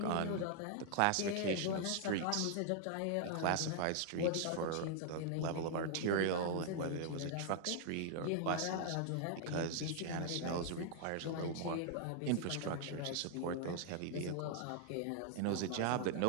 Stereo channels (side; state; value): both; different; correlation 0.00